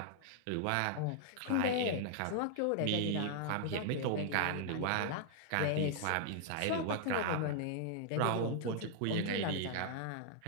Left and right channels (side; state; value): both; different; correlation 0.00